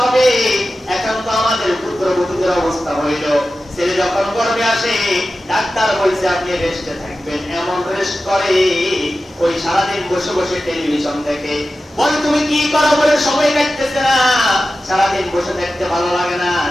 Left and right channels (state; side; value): normal; both; correlation 0.94